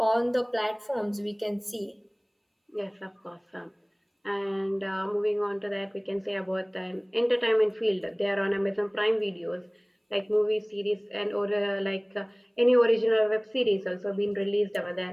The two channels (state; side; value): identical; both; correlation 1.00